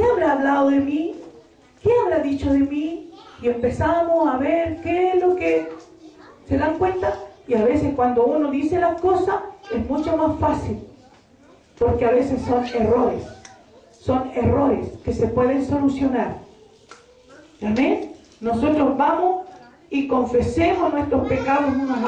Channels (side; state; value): both; identical; correlation 1.00